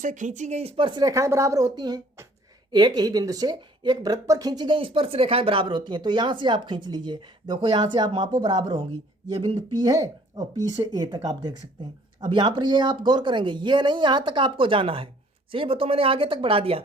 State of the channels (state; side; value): normal; both; correlation 0.57